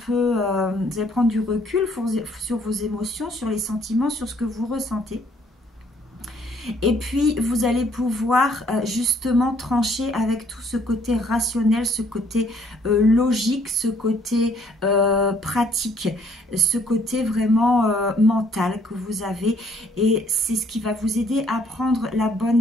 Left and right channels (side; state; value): both; normal; correlation 0.63